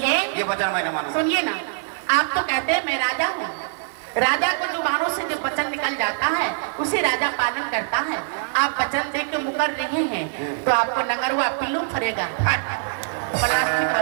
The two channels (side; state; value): left; silent; digital silence